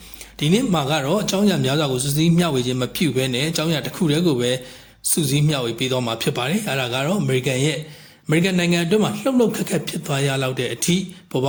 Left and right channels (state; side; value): identical; both; correlation 1.00